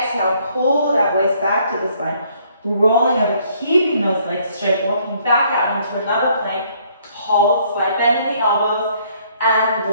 pull that waist back to the spine. Rolling over, keeping those legs straight, walking back out into another plank. Hold, slight bend in the elbows,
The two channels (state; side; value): inverted; both; correlation -0.65